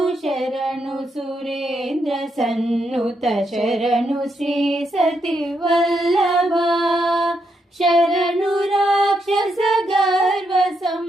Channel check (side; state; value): both; normal; correlation 0.80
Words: శరణు సురేంద్ర సన్నుత శరణు శ్రీ సతి వల్లభ శరణు రాక్షస గర్వ